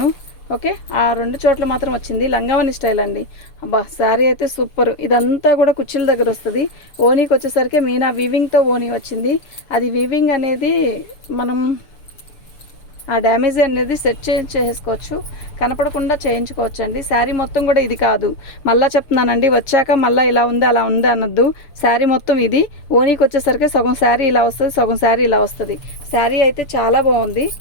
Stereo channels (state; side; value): late; right; 6.8 ms